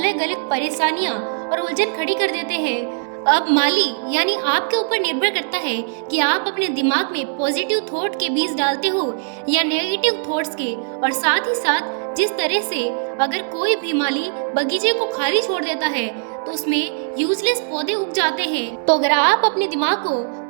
अलग परेशानियां और उलझन खड़ी कर देते हैं। अब माली यानी आपके ऊपर निर्भर करता है कि आप अपने दिमाग में पॉजिटिव थॉट के बीज डालते हो या नेगेटिव थॉट्स के। और साथ ही साथ जिस तरह से अगर कोई भी माली बगीचे को खाली छोड़ देता है तो उसमें यूजलेस पौधे उग जाते हैं, तो अगर आप अपने दिमाग को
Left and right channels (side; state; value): left; silent; digital silence